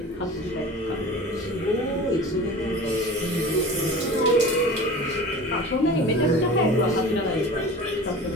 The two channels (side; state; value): both; normal; correlation 0.37